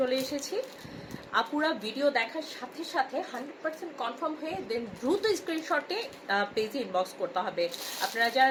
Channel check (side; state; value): both; identical; correlation 1.00